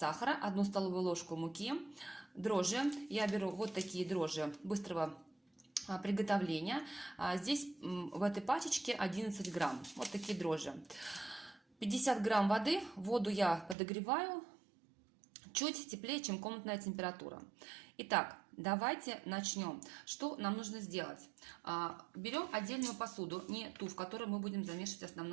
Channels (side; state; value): left; drops out; at 13.8 s